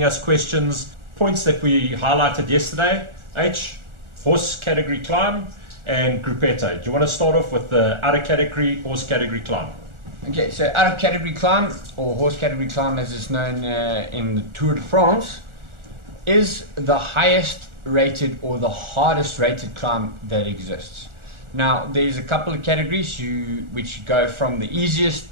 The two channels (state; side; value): late; left; 1.4 ms